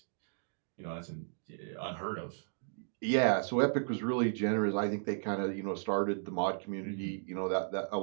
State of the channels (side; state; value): left; silent; digital silence